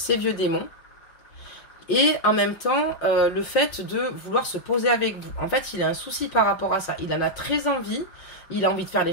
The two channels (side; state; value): right; late; 5.6 ms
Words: vieux démons. Et en même temps, le fait de vouloir se poser avec vous. En fait, il a un souci par rapport à ça. Il en a très envie. Il a envie de faire les